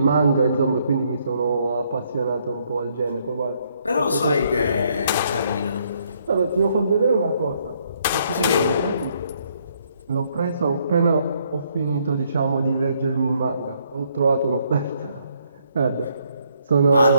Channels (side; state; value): both; inverted; correlation -0.70